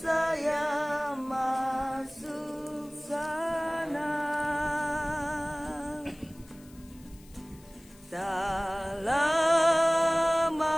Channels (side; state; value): left; noise; hiss, 26 dB below the sound